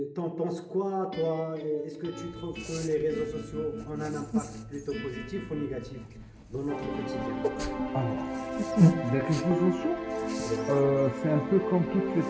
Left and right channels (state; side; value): identical; both; correlation 1.00